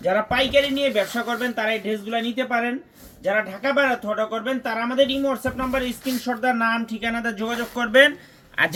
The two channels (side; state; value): both; identical; correlation 1.00